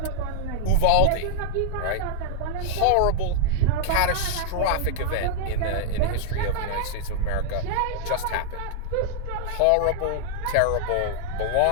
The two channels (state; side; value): different; both; correlation -0.01